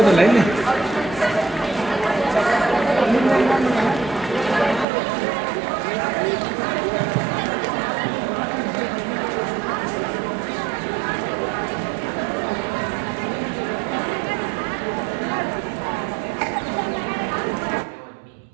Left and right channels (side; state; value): left; drops out; at 4.9 s